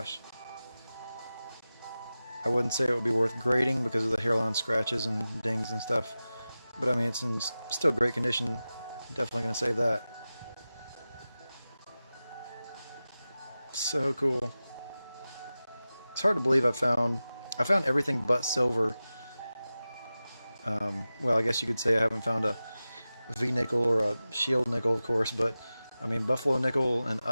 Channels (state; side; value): inverted; both; correlation -0.95